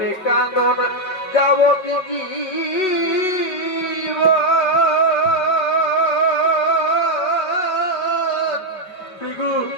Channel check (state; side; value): late; right; 5.3 ms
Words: কাঁদন যাবতীয় ফিগু